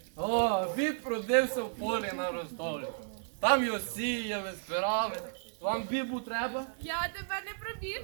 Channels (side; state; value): left; silent; digital silence